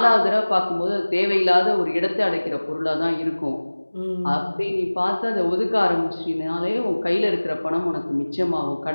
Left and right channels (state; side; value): inverted; both; correlation -1.00